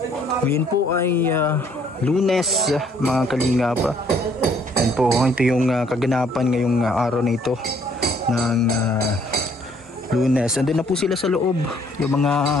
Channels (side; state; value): both; normal; correlation 0.63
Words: Ngayon po ay Lunes mga kalingap. Yan po, ito yung kaganapan ngayong araw na ito ng Lunes. Nandun na po sila sa loob yung